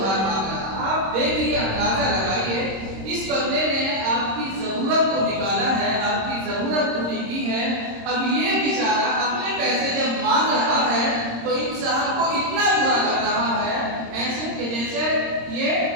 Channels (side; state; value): left; late; 26 ms